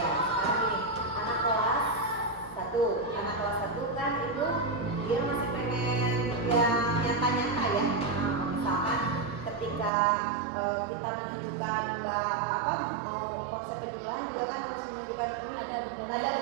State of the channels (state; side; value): drops out; left; at 9.9 s